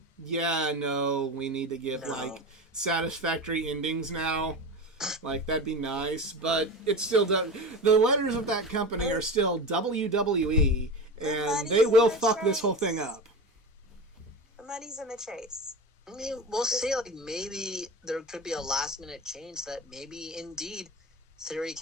yeah, no, we need to give like satisfactory endings now. Like, that'd be nice, but it's still the letters of that company are still WWE, and they will fuck this whole thing up. The money's in the chase. I mean, we'll see. Like, maybe there could be a last-minute change that maybe, indeed, Theory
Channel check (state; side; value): normal; both; correlation 0.26